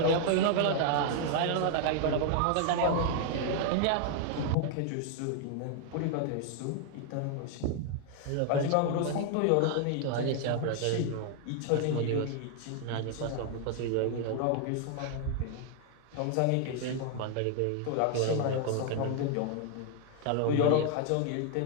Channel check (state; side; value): different; both; correlation 0.00